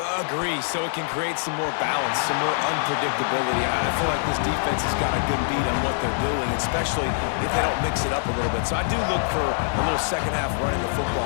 Agree, so it can create some more balance, some more unpredictability. I feel like this defense has got a good beat on what they're doing, especially if they don't mix it up a little bit. So I do look for a little second half running the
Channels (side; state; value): right; silent; 62 dB below the other